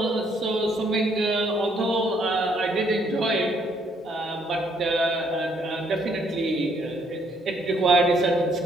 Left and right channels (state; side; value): normal; both; correlation 0.69